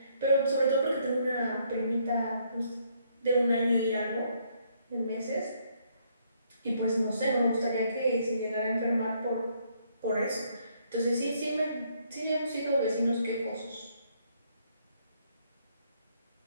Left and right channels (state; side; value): inverted; both; correlation -0.70